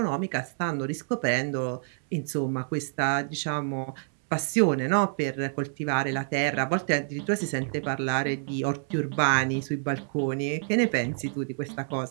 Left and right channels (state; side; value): silent; left; 60 dB below the other